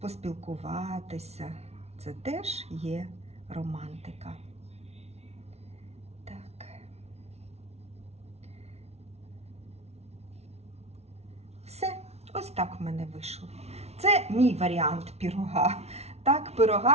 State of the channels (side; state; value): left; late; 0.31 ms